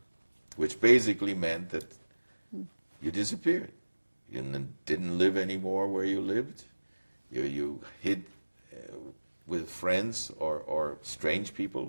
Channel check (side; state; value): both; inverted; correlation -1.00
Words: which basically meant that you disappeared. You didn't live anymore where you lived. You hid with friends or strange people